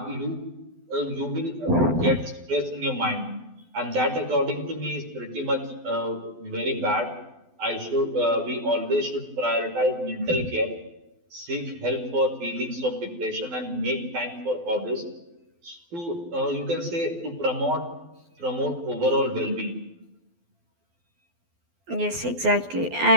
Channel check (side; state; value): left; late; 12 ms